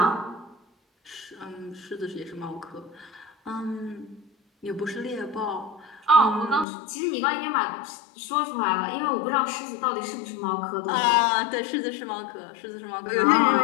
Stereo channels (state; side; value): drops out; right; at 6.7 s